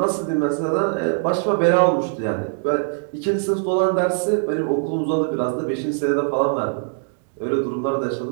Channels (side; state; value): left; silent; digital silence